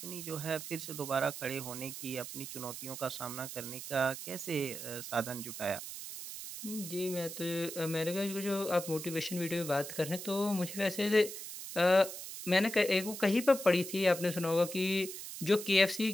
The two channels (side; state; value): right; noise; hiss, 9 dB below the sound